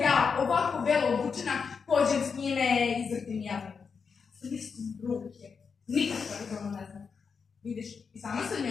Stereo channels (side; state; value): right; quieter; 5.7 dB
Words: ja ovako belo obučena pođem s njime i izvrtim javnim? Sam istim ruke. Nikakva je ono ne znam. Vidiš, i sama se od